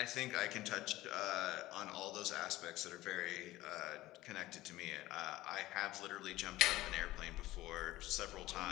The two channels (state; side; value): quieter; right; 16.9 dB